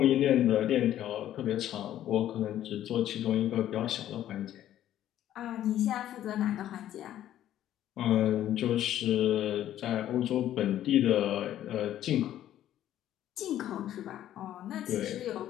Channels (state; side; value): quieter; right; 12.1 dB